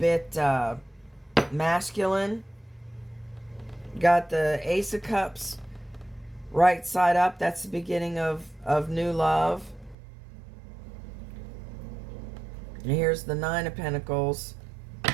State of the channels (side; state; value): left; drops out; at 10.0 s